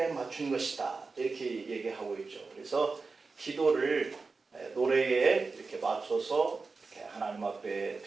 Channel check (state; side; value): quieter; left; 4.2 dB